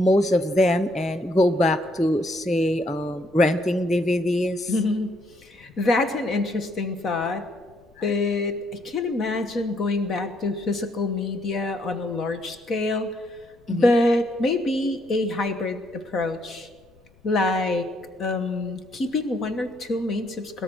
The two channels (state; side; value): noise; left; rumble, 30 dB below the sound